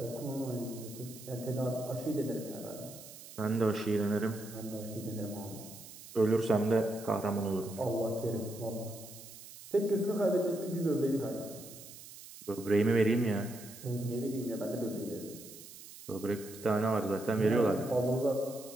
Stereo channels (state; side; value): noise; right; hiss, 16 dB below the sound